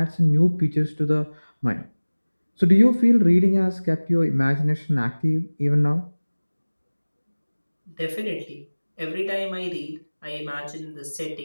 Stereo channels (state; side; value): inverted; both; correlation -1.00